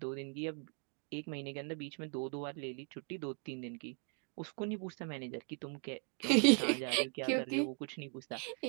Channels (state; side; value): quieter; left; 37.3 dB